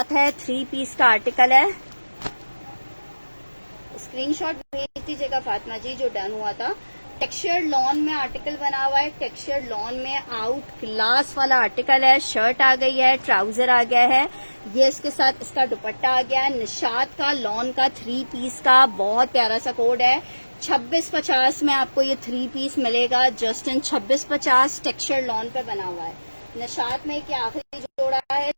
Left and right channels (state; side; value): inverted; both; correlation -1.00